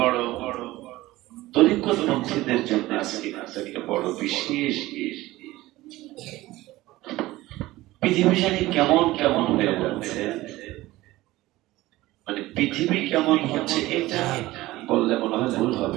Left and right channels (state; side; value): quieter; left; 17.7 dB